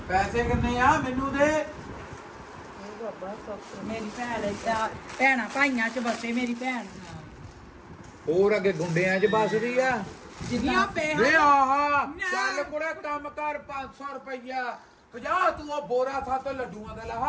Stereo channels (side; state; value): both; identical; correlation 1.00